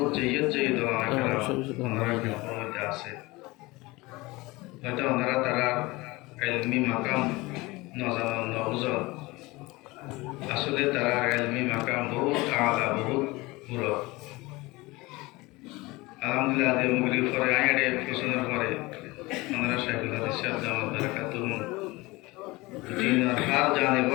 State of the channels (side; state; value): right; quieter; 22.1 dB